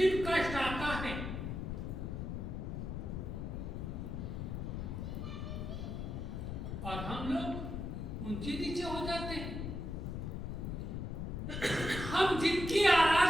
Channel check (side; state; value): left; noise; rumble, 4 dB below the sound